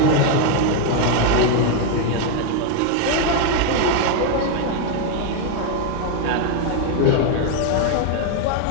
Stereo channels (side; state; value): both; different; correlation 0.01